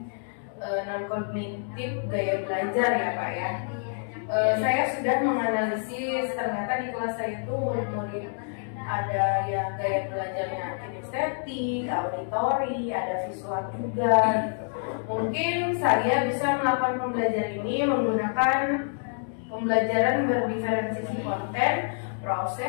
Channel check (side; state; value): right; silent; digital silence